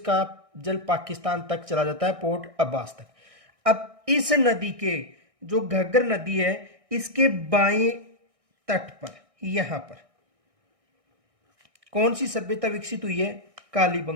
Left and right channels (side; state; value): left; late; 1.6 ms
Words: जल पाकिस्तान तक चला जाता है, पोर्ट अब्बास तक। अब इस नदी के जो घग्गर नदी है, इसके बाएं तट पर यहां पर कौन सी सभ्यता विकसित हुई है?